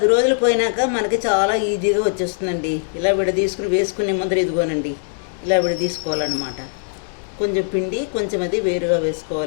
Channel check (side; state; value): right; silent; digital silence